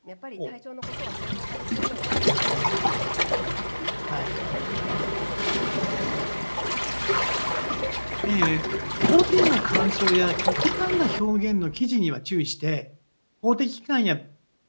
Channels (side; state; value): both; inverted; correlation -1.00